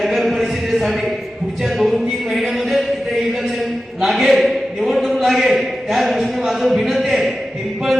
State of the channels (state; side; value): normal; both; correlation 0.93